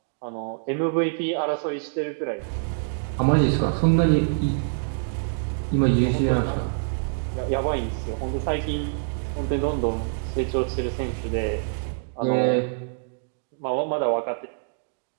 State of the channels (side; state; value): left; silent; digital silence